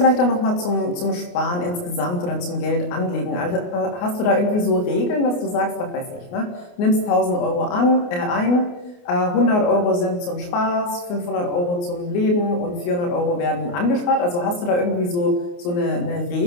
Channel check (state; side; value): late; right; 28 ms